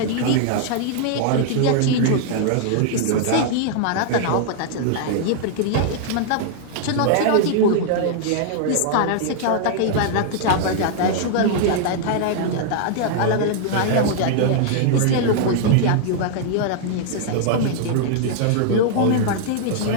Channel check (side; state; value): both; different; correlation -0.01